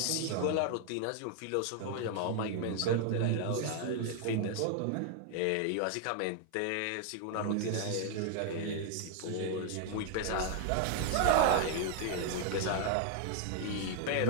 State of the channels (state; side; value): different; both; correlation 0.00